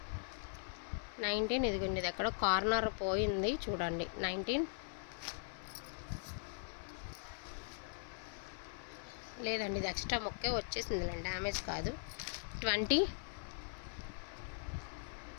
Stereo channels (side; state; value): right; silent; 51 dB below the other